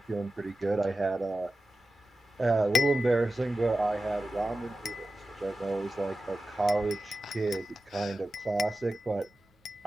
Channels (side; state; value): both; normal; correlation 0.93